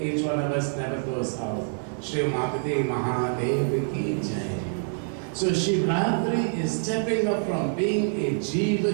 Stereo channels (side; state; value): left; silent; digital silence